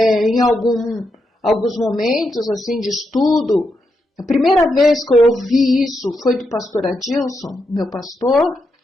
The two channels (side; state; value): both; normal; correlation 0.83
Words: alguns momentos assim de estudo, a primeira vez que eu ouvi isso foi do pastor Adilson, meu pastor,